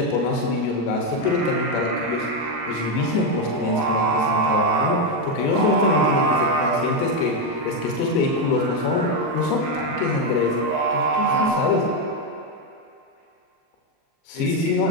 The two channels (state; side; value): late; right; 37 ms